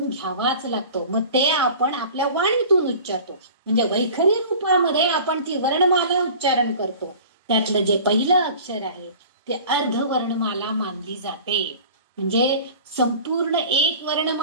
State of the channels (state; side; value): inverted; both; correlation -0.42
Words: घ्यावाच लागतो. मग ते आपण आपल्या वाणीतून उच्चारतो. म्हणजे वैखरी रूपामध्ये आपण ती वर्णमाला उच्चारण करतो. त्यातलं जे पहिलं अक्षर आहे ते अर्धवर्णमाला मानली जाते. म्हणजे संपूर्ण एक